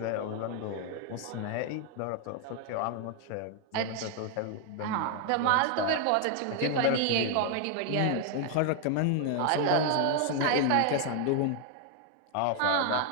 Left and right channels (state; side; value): different; both; correlation 0.00